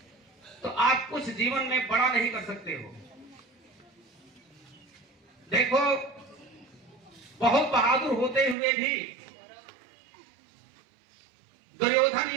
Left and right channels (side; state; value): left; drops out; at 8.6 s